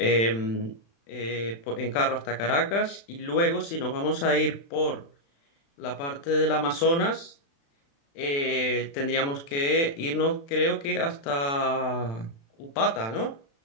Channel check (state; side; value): late; right; 36 ms